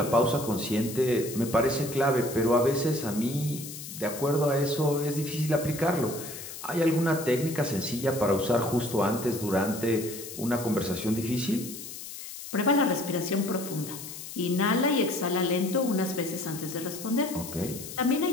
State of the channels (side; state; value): left; noise; hiss, 11 dB below the sound